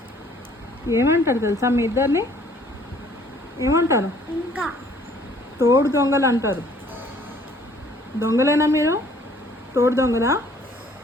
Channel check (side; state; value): both; normal; correlation 0.58